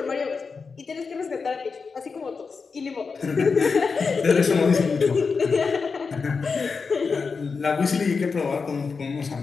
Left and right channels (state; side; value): quieter; right; 5.0 dB